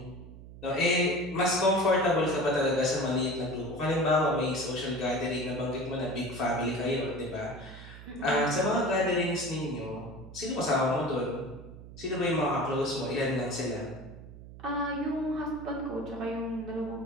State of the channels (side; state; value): right; noise; hum, 15 dB below the sound